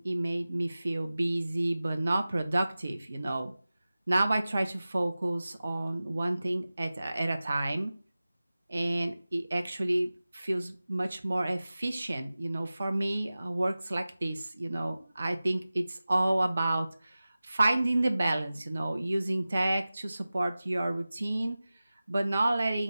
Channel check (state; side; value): inverted; both; correlation -0.97